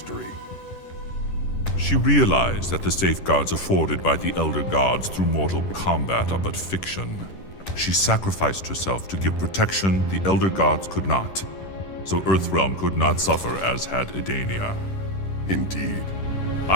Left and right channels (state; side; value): late; right; 10 ms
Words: She realized that the safeguards afforded by the Elder Gods through Mortal Kombat are but fiction. She sacrificed herself to give protection the Elder Gods could not, so Earthrealm could not suffer as had Edania. Indeed.